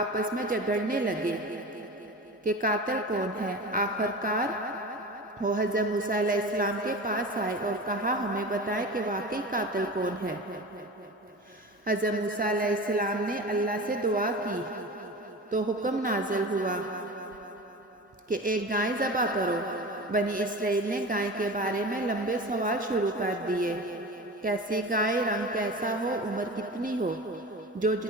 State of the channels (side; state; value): both; normal; correlation 0.32